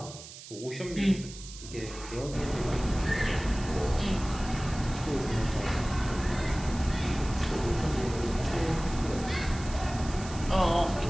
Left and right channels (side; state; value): right; noise; hiss, 15 dB below the sound